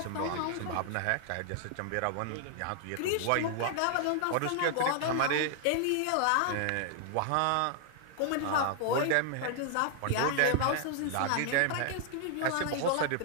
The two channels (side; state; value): both; different; correlation 0.00